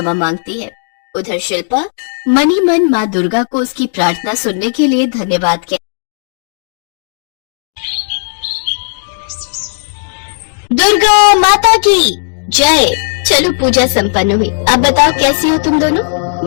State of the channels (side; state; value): right; silent; digital silence